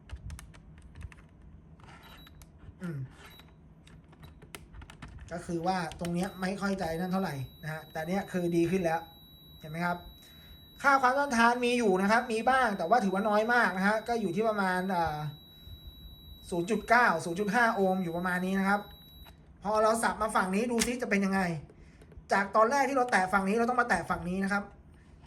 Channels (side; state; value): both; identical; correlation 1.00